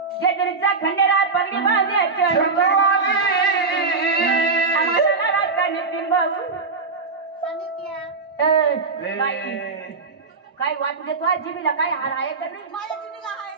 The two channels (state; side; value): quieter; left; 4.3 dB